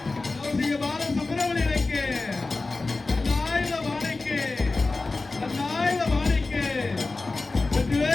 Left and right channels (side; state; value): right; quieter; 3.5 dB